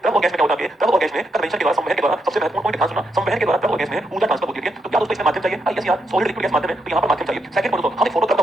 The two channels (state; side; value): normal; both; correlation 0.80